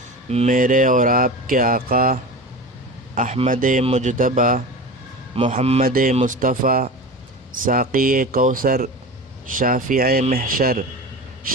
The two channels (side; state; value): both; normal; correlation 0.30